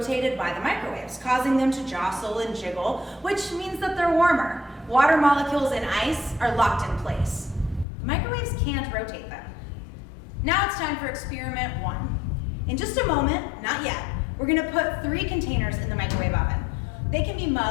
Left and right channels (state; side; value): drops out; right; at 7.9 s